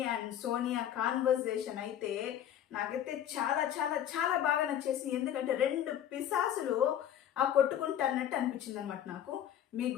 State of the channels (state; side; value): quieter; right; 10.5 dB